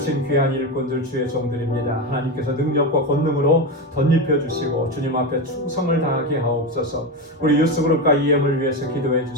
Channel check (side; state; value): both; normal; correlation 0.16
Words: 귀한 일꾼들 주의 종들입니다. 하나님께서 능력과 권능으로 덧입혀 주시고 주님 앞에 충성을 다하게 하옵소서. 우리 유스그룹과 EM을 위해서 기도해